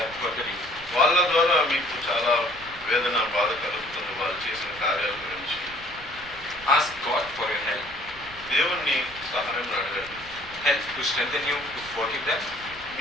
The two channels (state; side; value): noise; right; rumble, 20 dB below the sound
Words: are burdening, వాళ్ళ ద్వారా మీకు చాలా వేదన బాధ కలుగుతుంది వాళ్ళు చేసిన కార్యాల గురించి. ask God for your help. దేవుణ్ణి సహాయం అడగండి. Help to strengthen you to forgive them.